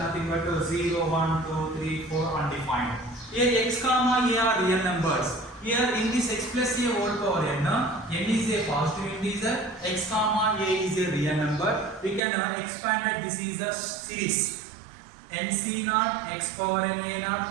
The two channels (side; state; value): left; drops out; at 12.2 s